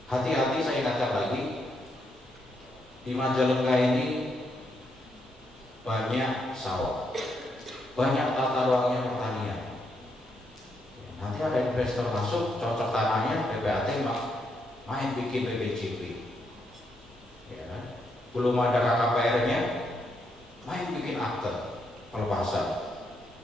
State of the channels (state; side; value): normal; both; correlation 0.78